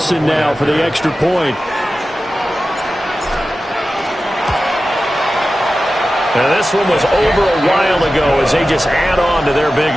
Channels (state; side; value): normal; both; correlation 0.94